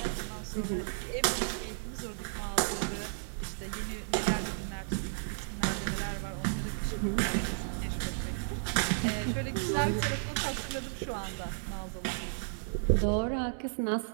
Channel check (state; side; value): silent; left; 56 dB below the other